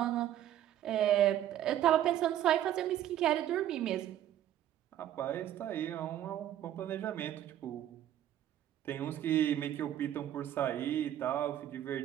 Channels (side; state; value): left; quieter; 11.7 dB